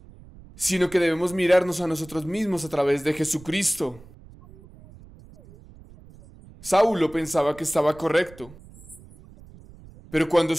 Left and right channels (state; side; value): noise; right; rumble, 21 dB below the sound